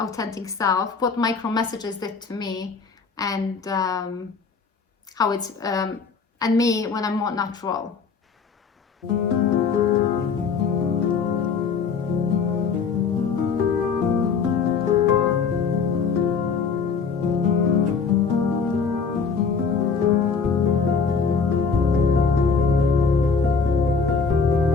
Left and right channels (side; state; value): right; quieter; 5.4 dB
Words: self, what micro messages did to me, and how it's and me when I'm more natural.